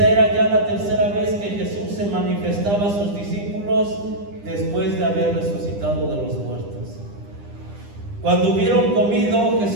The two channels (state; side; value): late; left; 10 ms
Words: era ya la tercera vez que Jesús se manifestaba a sus discípulos después de haber resucitado de los muertos. Cuando hubieron comido,